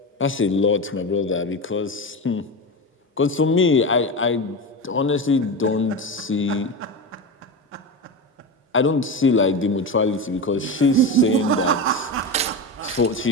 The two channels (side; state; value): both; normal; correlation 0.21